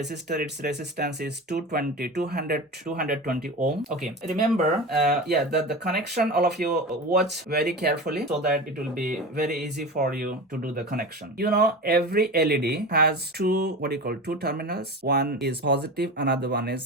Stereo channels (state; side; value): normal; both; correlation 0.28